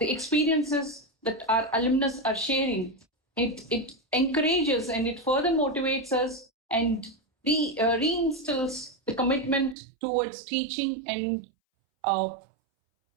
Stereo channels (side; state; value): left; drops out; at 9.8 s